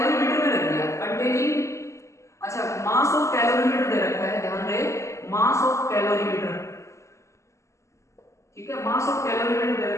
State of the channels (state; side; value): late; right; 0.14 ms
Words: में रख दिया कंटेनिंग, अच्छा मास ऑफ कैलोरीमीटर दे रखा है, ध्यान रहे मास ऑफ कैलोरीमीटर, ठीक है, मास ऑफ कैलोरीमीटर दे